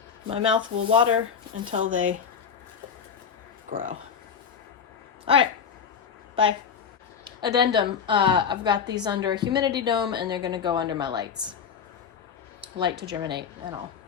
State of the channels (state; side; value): quieter; right; 7.0 dB